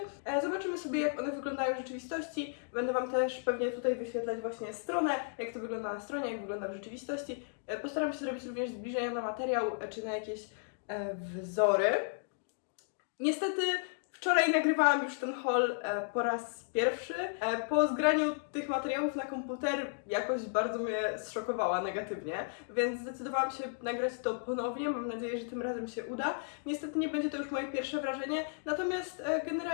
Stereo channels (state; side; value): silent; right; digital silence